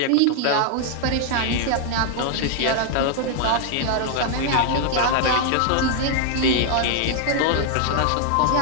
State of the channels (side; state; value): both; different; correlation 0.00